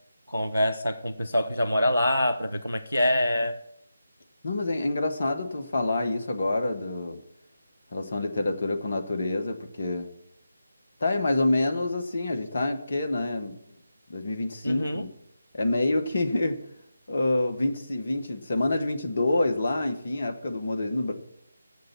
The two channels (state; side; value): inverted; both; correlation -0.90